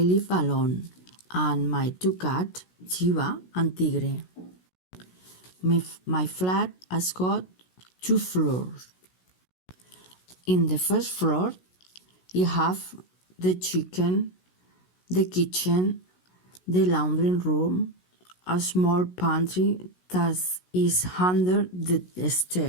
alone and my two cats, Chiva and Tigre. My flat has got 2 floors. In the first floor, you have the kitchen, the laundry room, a small pantry that is under the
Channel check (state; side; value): late; right; 16 ms